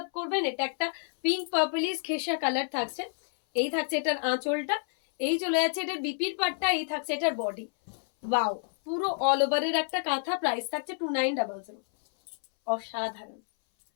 করবেন। এটা একটা পিঙ্ক পার্পলিশ খেসা কালার থাকছে। এই থাকছে এটার আঁচলটা। এই চলে যাচ্ছে এটার বিপির পাটটা। এই থাকছে এটার বডি। ওয়াও, পুরো অল ওভারের একটা কাঁথা। প্রাইস থাকছে 2900। অসাধারণ,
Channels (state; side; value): silent; right; 59 dB below the other